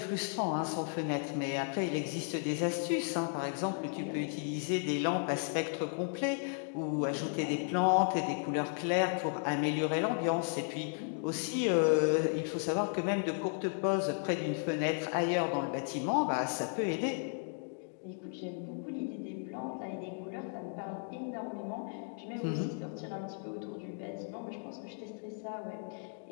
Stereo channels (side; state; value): right; silent; 55 dB below the other